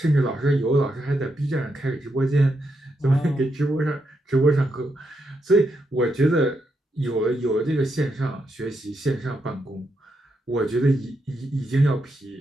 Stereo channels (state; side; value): normal; both; correlation 0.82